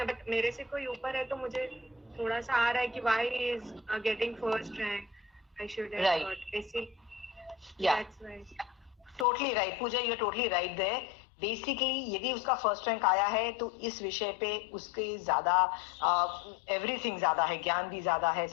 बट मेरे से कोई ऊपर है तो मुझे थोड़ा सा आ रहा है कि why he is getting first rank, I should have got ऐसे। That's right, totally right Pooja, you are totally right there. Basically यदि उसका फर्स्ट रैंक आया है तो इस विषय पे उसके ज्यादा एवरीथिंग ज्यादा है, ज्ञान भी ज्यादा है,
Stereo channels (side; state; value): right; drops out; at 9.2 s